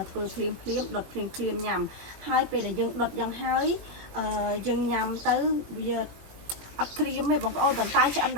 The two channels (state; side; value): late; left; 21 ms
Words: កធ្វើភ្លាមដុតភ្លាមញ៉ាំហើយពេលដែលយើងដុតយ៉ាងហើយយើងញ៉ាំទៅវាអត់ក្រៀមទេបងប្អូនប៉ុន្តែឆ្អិន